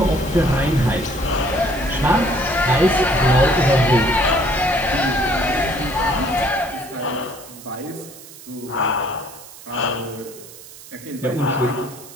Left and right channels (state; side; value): noise; right; hiss, 18 dB below the sound